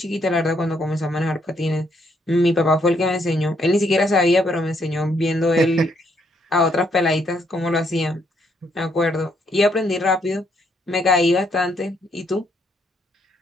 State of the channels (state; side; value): normal; both; correlation 0.72